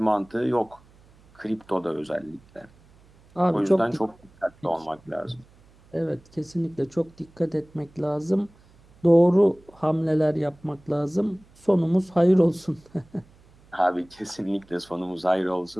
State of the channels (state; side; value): noise; right; hum, 28 dB below the sound